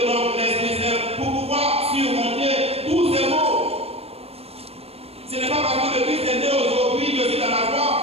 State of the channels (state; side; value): late; left; 0.29 ms